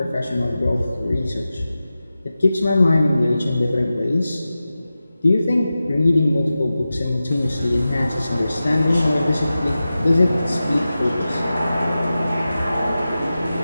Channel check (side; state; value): both; inverted; correlation -0.94